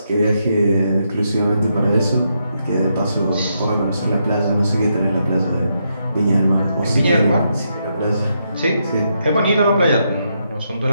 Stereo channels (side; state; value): both; inverted; correlation -0.80